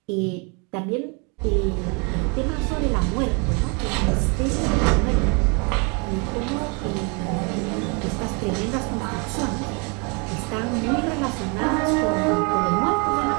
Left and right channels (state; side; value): quieter; left; 33.1 dB